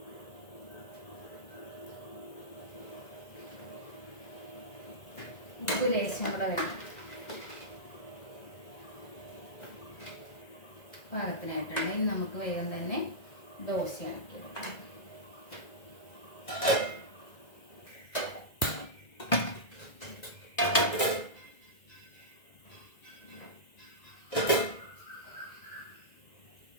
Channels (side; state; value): right; late; 1.9 ms